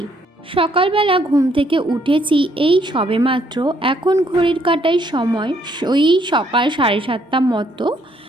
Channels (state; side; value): normal; both; correlation 0.69